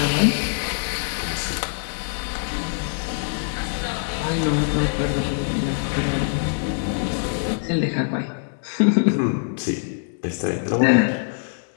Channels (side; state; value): right; silent; 63 dB below the other